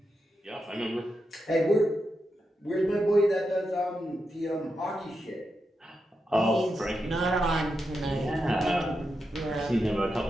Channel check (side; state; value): both; normal; correlation 0.87